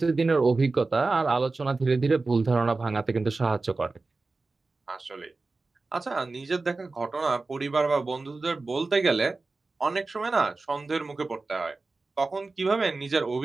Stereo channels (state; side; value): quieter; left; 3.6 dB